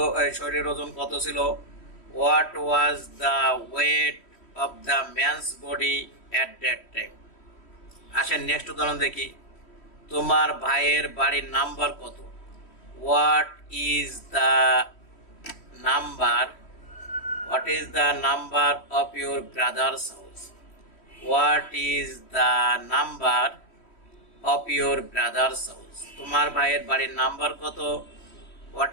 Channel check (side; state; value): right; late; 3.1 ms